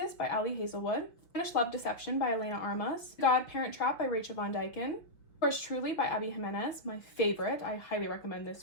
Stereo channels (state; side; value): late; right; 5.7 ms